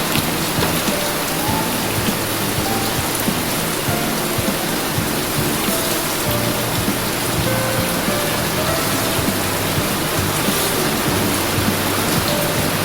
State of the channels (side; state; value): left; noise; rumble, 12 dB below the sound